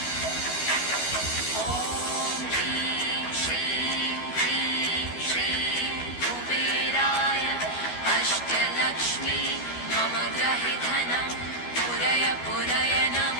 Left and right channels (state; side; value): late; right; 12 ms